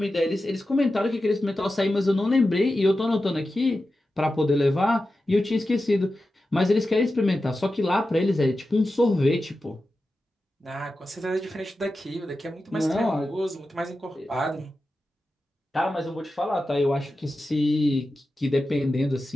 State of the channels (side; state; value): both; normal; correlation 0.92